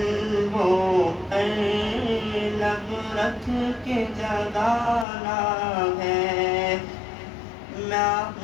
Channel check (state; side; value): drops out; right; at 5.1 s